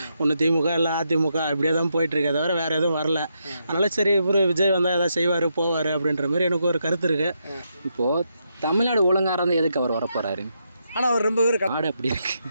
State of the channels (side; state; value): both; inverted; correlation -0.81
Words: ஒன்று திமுக இல்லை அதிமுக இப்படியே தான் போயிட்டுருக்கு, தவிர வேறு எதுவும் வரல. அதனால் சரி இவர் விஜய் வந்தால் எதாவது செய்வார் போவார் அப்படின்ற மாதிரி எனக்கு ஒரு கருத்து இருக்குது. இப்போது தமிழ்நாடு ஒழுங்காக இருந்தால் எதுக்கு அவர் வரப்போகிறாரு? ஆனால் அவர் ரொம்ப பேர் நாடு அப்படி இருக்கு.